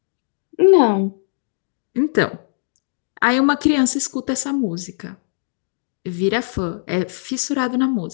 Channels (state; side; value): silent; right; digital silence